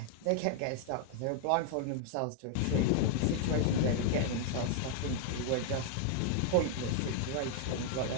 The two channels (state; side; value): different; both; correlation 0.00